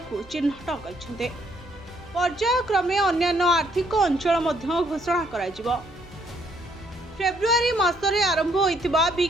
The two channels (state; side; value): normal; both; correlation 0.69